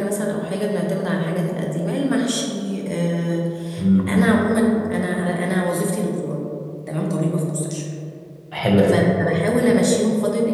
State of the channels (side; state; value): both; identical; correlation 1.00